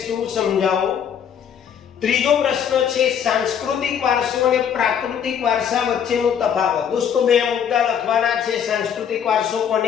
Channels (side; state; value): right; quieter; 8.3 dB